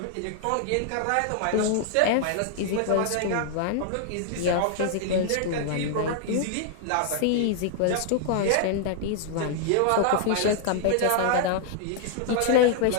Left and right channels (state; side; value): different; both; correlation 0.00